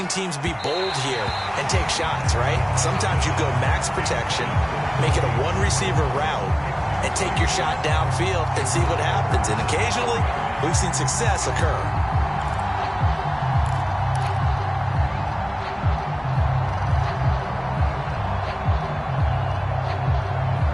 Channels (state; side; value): identical; both; correlation 1.00